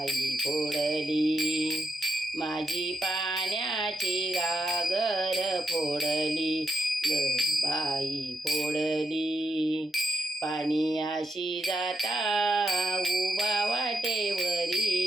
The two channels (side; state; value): both; normal; correlation 0.83